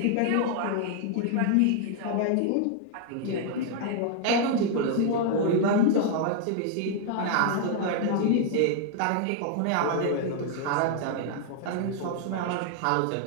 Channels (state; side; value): different; both; correlation 0.00